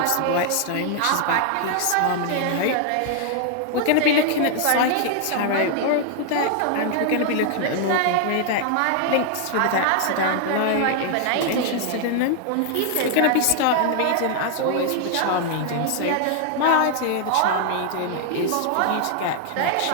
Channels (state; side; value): different; both; correlation 0.00